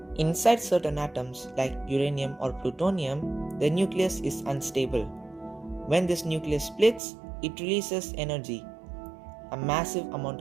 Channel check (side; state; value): left; drops out; at 7.0 s